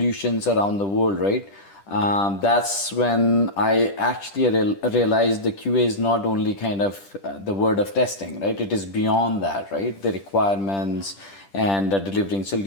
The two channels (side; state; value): right; late; 10 ms